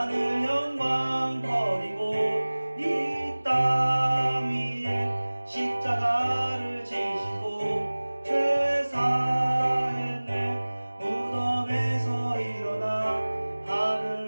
영광 버리고 이 땅 위에 십자가를 지시고 죄 사했네. 무덤에서 일어나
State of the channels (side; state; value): both; inverted; correlation -1.00